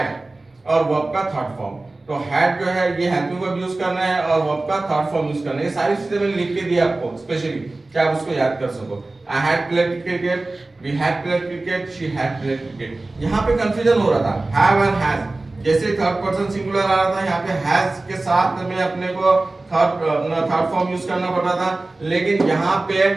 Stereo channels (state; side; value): quieter; left; 3.0 dB